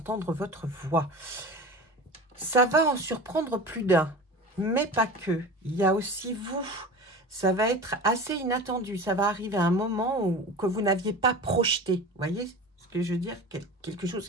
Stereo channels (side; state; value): both; normal; correlation 0.34